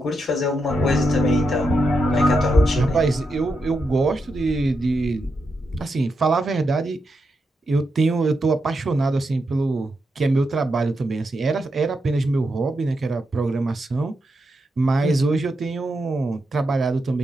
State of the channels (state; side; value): normal; both; correlation 0.85